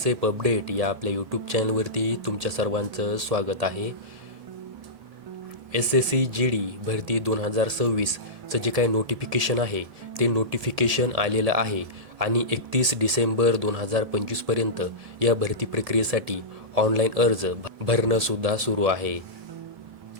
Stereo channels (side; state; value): left; late; 1.8 ms